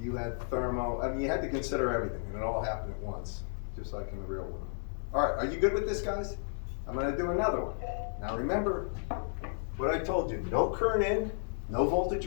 you had thermo. I mean, you had to consider everything, and it all happened at once, just like in the real world. All right, are you good with this, guys? I'm gonna do another one. Now remember what I told you, no current in, no voltage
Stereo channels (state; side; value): silent; right; digital silence